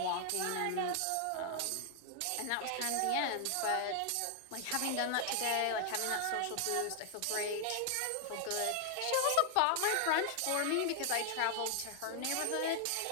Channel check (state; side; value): different; both; correlation 0.00